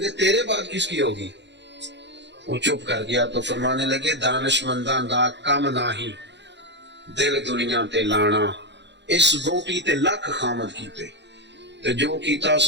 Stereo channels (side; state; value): left; late; 0.52 ms